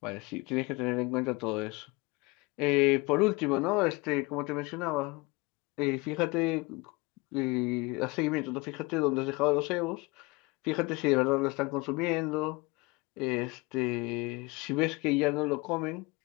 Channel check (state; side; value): quieter; right; 25.2 dB